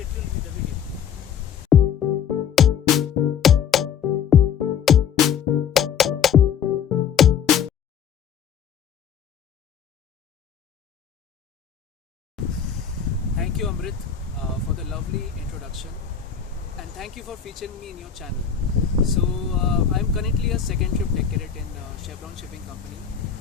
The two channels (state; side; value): quieter; right; 7.8 dB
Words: tuned with the video. Thank you, Amrit, for the lovely introduction, and thank you for featuring me in your channel. So, I'm currently a second trip deck cadet in Chevron Shipping Company,